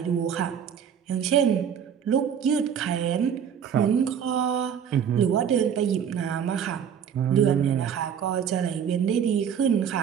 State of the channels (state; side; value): quieter; left; 8.1 dB